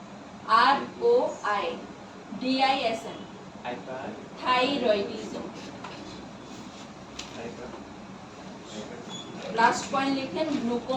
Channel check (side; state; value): both; identical; correlation 1.00